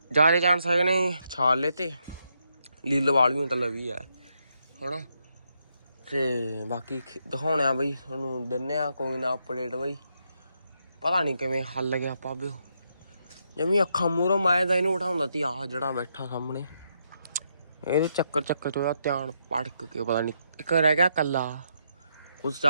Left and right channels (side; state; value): both; inverted; correlation -0.79